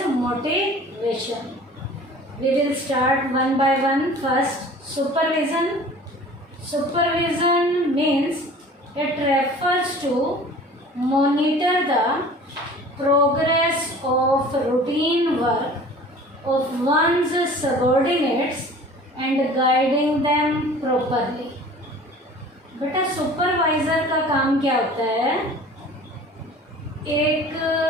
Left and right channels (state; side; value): normal; both; correlation 0.45